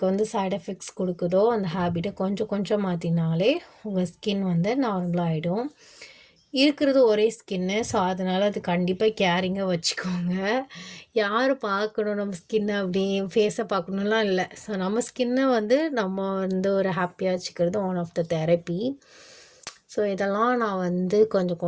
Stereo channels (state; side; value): identical; both; correlation 1.00